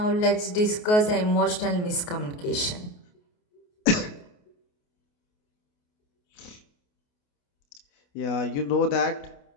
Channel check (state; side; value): late; right; 28 ms